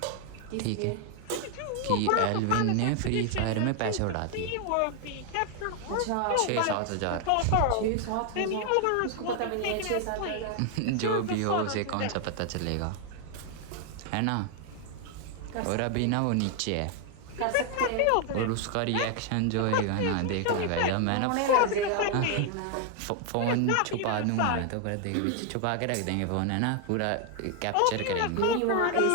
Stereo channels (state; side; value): different; both; correlation 0.00